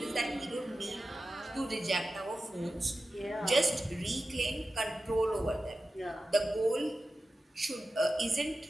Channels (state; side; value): normal; both; correlation 0.93